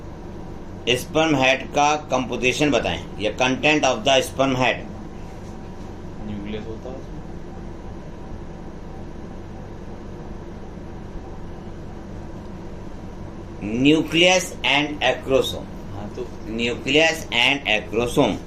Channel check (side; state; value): both; identical; correlation 1.00